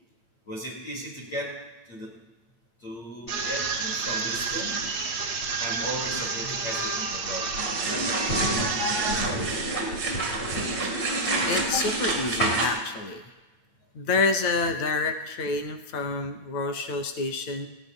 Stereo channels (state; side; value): late; right; 8.8 ms